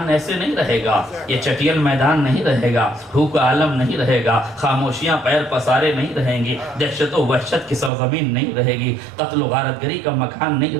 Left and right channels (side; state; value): left; drops out; at 7.9 s